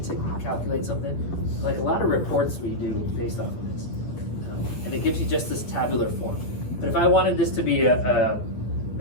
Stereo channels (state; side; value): late; right; 9.6 ms